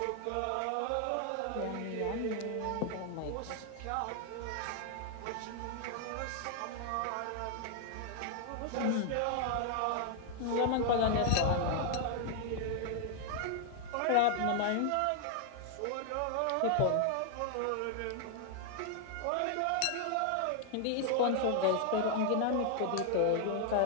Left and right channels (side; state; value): both; different; correlation 0.00